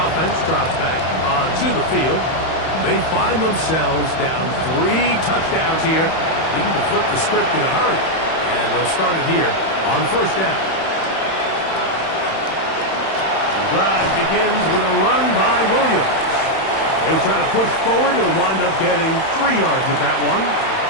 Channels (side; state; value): right; late; 31 ms